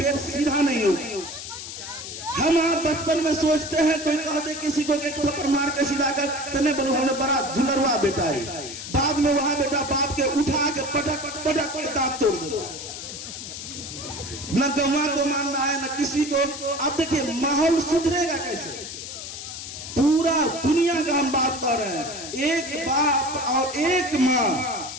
सीधा नहीं होगा। हम आप बचपन में सोचते हैं, कोई कह दे किसी को एक थप्पड़ मार के सीधा कर, तने बोलो हमें बड़ा झुलरवा बेटा है, बाद में वहां बेटा बाप के उठा के पटक पटक के दांत तोड़ देता है। न गौवा को मानना है न किसी को। अब देखिए माहौल सुधरेगा कैसे? पूरा दुनिया का हम बात कर रहे हैं, एक बाप और एक माँ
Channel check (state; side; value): noise; left; hiss, 9 dB below the sound